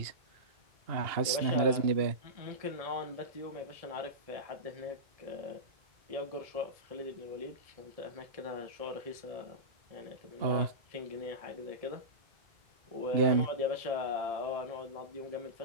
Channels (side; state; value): left; late; 2.8 ms